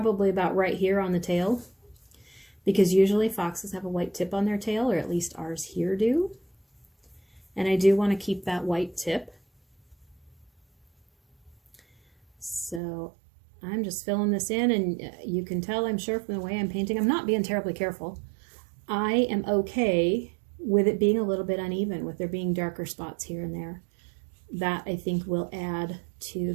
about right here on the tail, because usually foxes have a white tip on their tail, or at least ours here do. And I do want to keep that white tip. So I'm just filling this in, and you can tell, I'm sure, from the way I'm painting, I'm not being terribly careful. I am okay with it being a little bit uneven, with there being darker spots here and there. That, I think, will add to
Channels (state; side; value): drops out; left; at 12.8 s